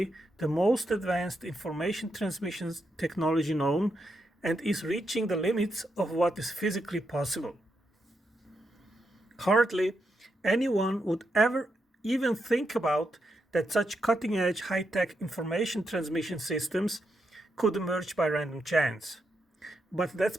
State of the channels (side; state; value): both; normal; correlation 0.83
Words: the most advanced information transmission technology known and is reaching the limits of what is physically possible. Hardly anyone would ever even think about that such cutting-edge high-tech information transmission systems could emerge by random chance. But that's